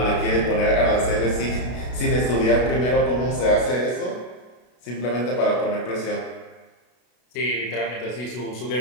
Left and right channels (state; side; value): late; right; 32 ms